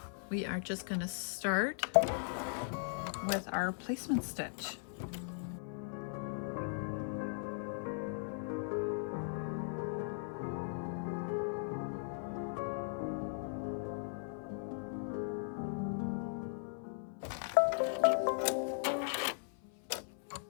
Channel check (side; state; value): right; silent; 52 dB below the other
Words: we are just going to start with our placement stitch.